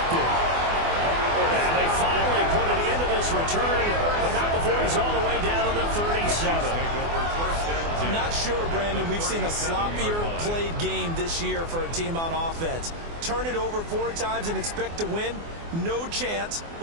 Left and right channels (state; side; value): late; left; 24 ms